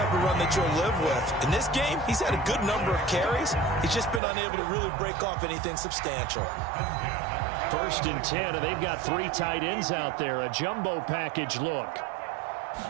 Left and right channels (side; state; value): left; drops out; at 4.2 s